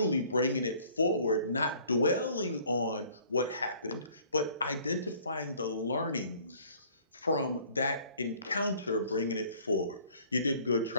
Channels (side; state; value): both; inverted; correlation -0.55